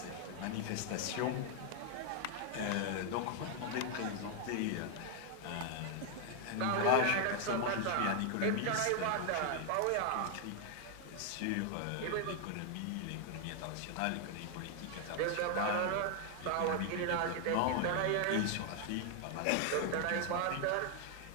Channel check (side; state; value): both; different; correlation 0.00